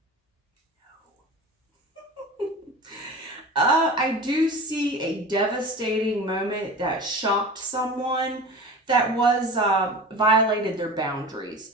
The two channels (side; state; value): both; normal; correlation 0.34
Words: I do see a devastating moment that shocked someone that was violated their boundaries